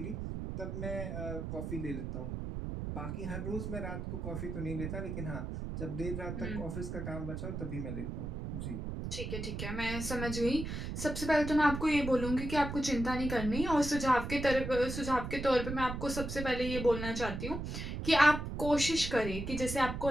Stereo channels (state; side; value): noise; right; rumble, 5 dB below the sound